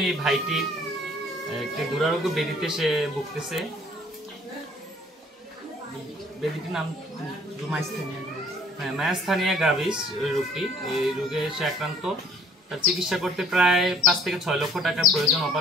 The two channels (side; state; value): both; normal; correlation 0.56